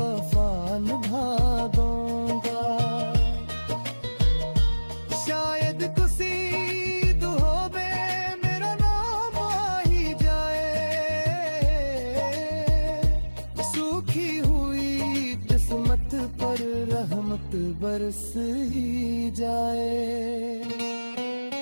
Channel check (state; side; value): inverted; both; correlation -1.00